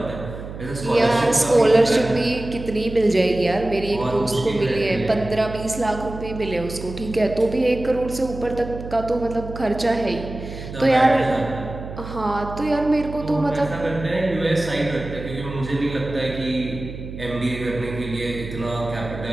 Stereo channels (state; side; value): noise; right; hum, 10 dB below the sound